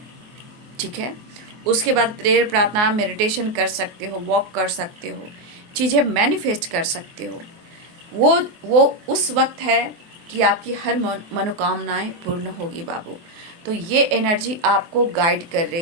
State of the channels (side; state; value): left; late; 24 ms